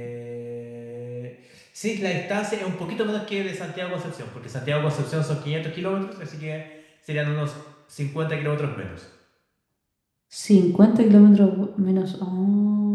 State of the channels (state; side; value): identical; both; correlation 1.00